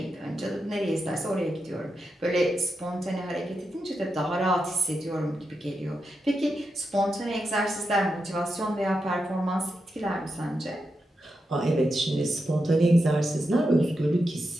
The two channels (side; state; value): both; normal; correlation 0.87